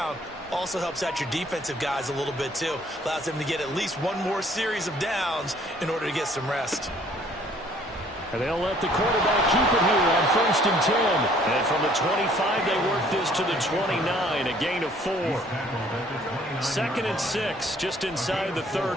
Also helps out your defensive guys a little bit too. Allows them to get at least 1 more series of downs in order to get some rest. And they'll let the quarterback keep it here on 1st and 10. And from the 25, they work this to the 29, a gain of 4. 2nd and 6, just inside the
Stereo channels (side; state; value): both; normal; correlation 0.59